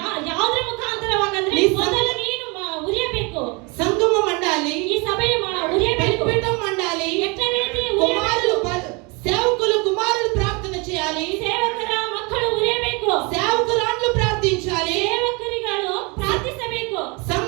ಯಾವುದರ ಮುಖಾಂತರವಾಗಂದ್ರೆ ನೀ ಮೊದಲು ನೀನು ಉರಿಯಬೇಕು. సంఘము మండాలి, ಈ ಸಭೆಯ ಉರಿಯಬೇಕು. బలిపీఠం మండాలి, ಎಟ್ಟ ರೀತಿ కుమారులు ಉರಿಯಬೇಕು. సేవకులు కుమారులు ప్రార్థన చేయాలి, ಸೇವಕರ ಮಕ್ಕಳು ಉರಿಯಬೇಕು. సేవకురాండ్లు ప్రార్థించాలి, ಸೇವಕರಿಗಳು ಪ್ರಾರ್ಥಿಸಬೇಕು.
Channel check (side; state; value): left; quieter; 29.0 dB